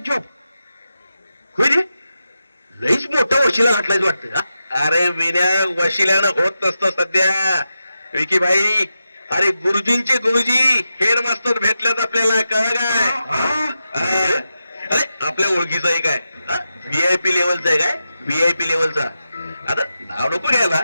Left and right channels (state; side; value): inverted; both; correlation -0.90